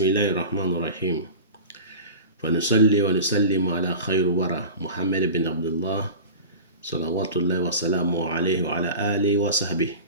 الله الرحمن الرحيم. فنصلي ونسلم على خير ورى محمد بن عبد الله صلوات الله وسلامه عليه وعلى آله وصحبه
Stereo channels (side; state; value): both; inverted; correlation -0.34